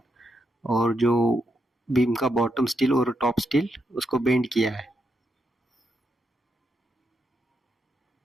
और जो बीम का बॉटम स्टील और टॉप स्टील उसको बेंड किया है।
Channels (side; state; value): both; normal; correlation 0.81